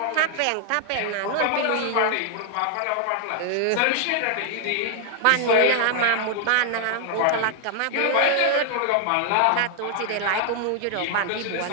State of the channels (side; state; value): both; different; correlation 0.00